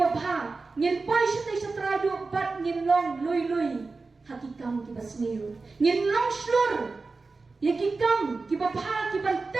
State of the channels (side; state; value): left; quieter; 3.9 dB